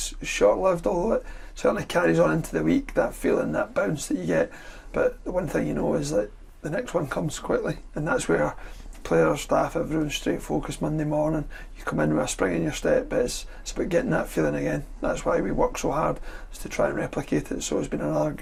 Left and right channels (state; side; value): identical; both; correlation 1.00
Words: short-lived, although it certainly carries on into the week, that feeling, that bounce that you get. But the one thing you know is that the next one comes quickly, and that's where players, staff, everyone's straight focused Monday morning. You come in with a spring in your step, but it's about getting that feeling again. That's why we work so hard, is to try and replicate it. So it's been another